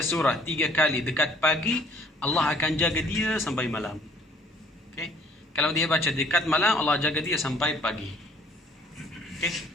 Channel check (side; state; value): both; normal; correlation 0.58